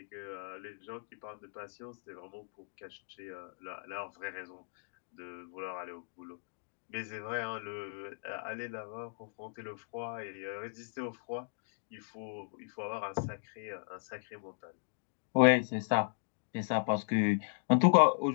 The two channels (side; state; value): right; silent; digital silence